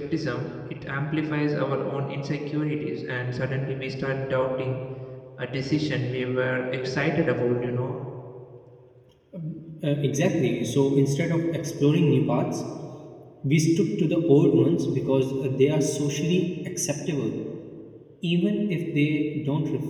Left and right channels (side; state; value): both; identical; correlation 1.00